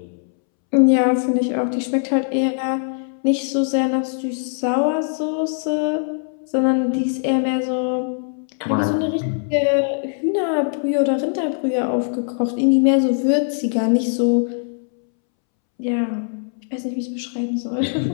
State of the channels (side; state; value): right; silent; 65 dB below the other